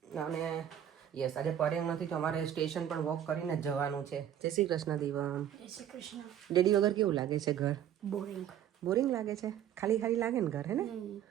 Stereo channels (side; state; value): left; quieter; 10.2 dB